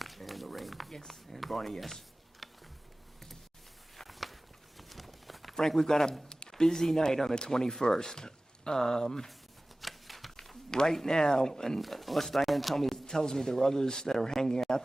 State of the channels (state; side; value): normal; both; correlation 0.98